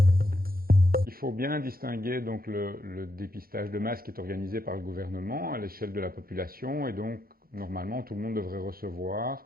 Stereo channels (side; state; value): left; late; 0.43 ms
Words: Il faut bien distinguer donc le dépistage de masse qui est organisé par le gouvernement à l'échelle de la population et donc normalement tout le monde devrait recevoir